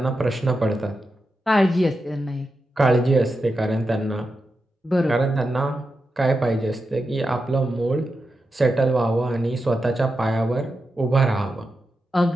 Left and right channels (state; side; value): normal; both; correlation 0.89